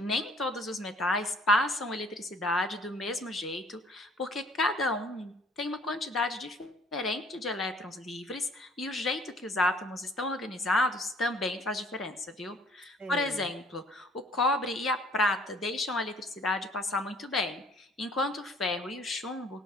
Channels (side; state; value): both; normal; correlation 0.56